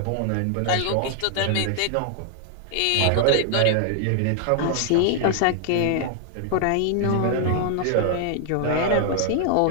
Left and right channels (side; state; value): both; different; correlation -0.01